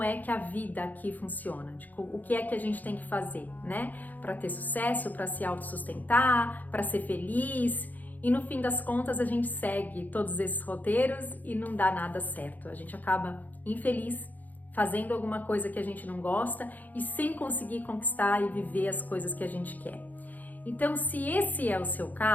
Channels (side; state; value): right; late; 0.082 ms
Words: é que a vida aqui funciona, de o que é que a gente tem que fazer, né? Para ter sucesso, para se autossustentar, para ser feliz. E no fim das contas a gente segue todos esses roteiros e não dá nada certo. A gente acaba infeliz, fazendo alguma coisa que a gente não gosta e sem conseguir conquistar e viver as coisas que a gente quer. Então, se esse é o seu